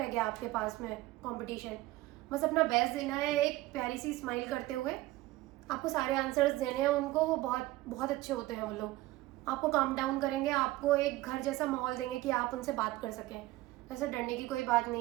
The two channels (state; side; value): quieter; left; 17.7 dB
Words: गया आपके पास में कंपटीशन। बस अपना बेस्ट देना है, एक प्यारी सी स्माइल करते हुए आपको सारे आंसर्स देने हैं उनको। वो बहुत बहुत अच्छे होते हैं वो लोग, आपको काम डाउन करेंगे, आपको एक घर जैसा माहौल देंगे कि आप उनसे बात कर सकें। वैसे डरने की कोई बात